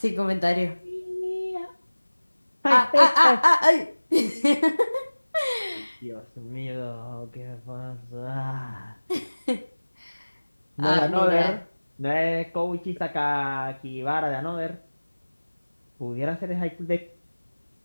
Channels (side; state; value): both; inverted; correlation -1.00